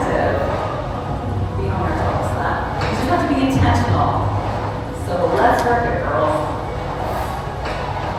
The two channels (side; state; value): both; identical; correlation 1.00